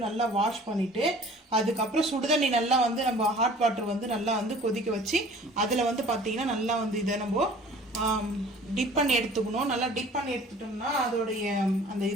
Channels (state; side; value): normal; both; correlation 0.49